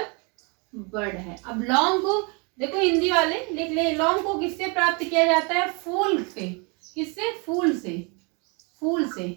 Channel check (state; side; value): quieter; left; 32.0 dB